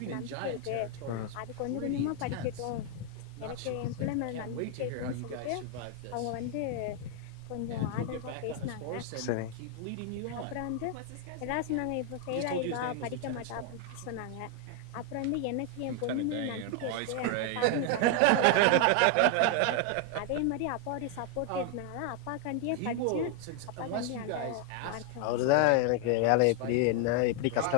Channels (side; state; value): both; different; correlation 0.00